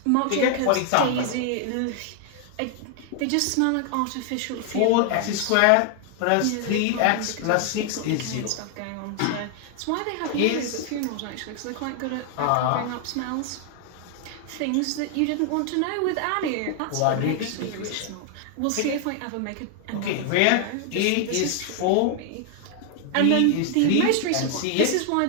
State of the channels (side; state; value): both; different; correlation 0.00